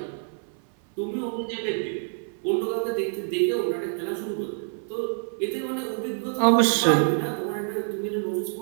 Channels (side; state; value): left; silent; 57 dB below the other